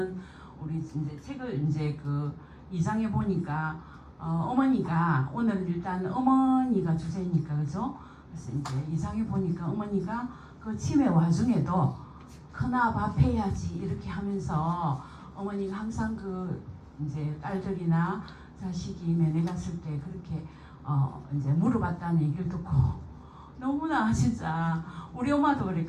우리 이제 책을 이제 그 2장에 보니까 어머니가 오늘 일단 어머니가 주제니까 그죠? 그래서 이제 2장에 보니까 어머니가 그 치매 와중에도 크나 밥 해야지 이렇게 하면서 어머니가 항상 그 이제 딸들이나 자식이 면회 갔을 때 그렇게 이제 물어봤다는 얘기를 듣고 너무나 진짜 우리 엄마도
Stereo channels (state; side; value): identical; both; correlation 1.00